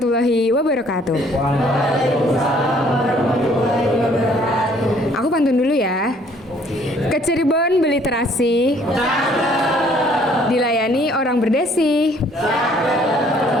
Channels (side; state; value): both; normal; correlation 0.60